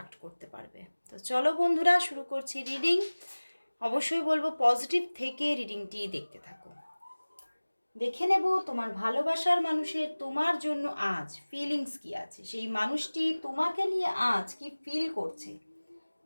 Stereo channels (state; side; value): inverted; both; correlation -1.00